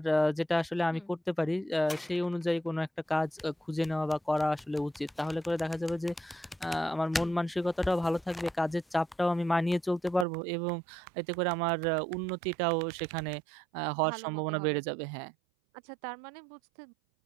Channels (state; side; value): drops out; left; at 10.2 s